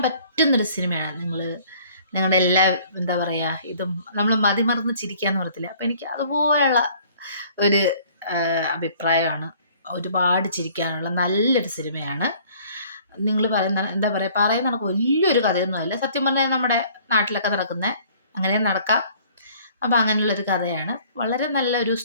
പറ്റുന്നൊരു സിനിമയാണ്. നിങ്ങളുടെ എല്ലാ എന്താ പറയുക, ഇതും നമ്മൾ മതിമറന്ന് ചിരിക്കാന്ന് പറയത്തില്ല, അപ്പം എനിക്ക് അതുപോലെയുള്ള ഒരു അഭിപ്രായമാണ്. ഒരുപാട് ചിരിക്കാനുള്ള നല്ലൊരു സിനിമയാണ്. നിങ്ങൾ പറയുന്ന എന്താ പറയുന്ന കണക്ക് വലിയൊരു കഥയൊന്നുമല്ല. സത്യം പറഞ്ഞാൽ നമ്മുടെ നാട്ടിലൊക്കെ നടക്കുന്ന അങ്ങനെ നടക്കാം. അപ്പം അങ്ങനെയുള്ളൊരു കഥയാണ്. വളരെ നല്ലൊരു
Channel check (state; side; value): inverted; both; correlation -0.55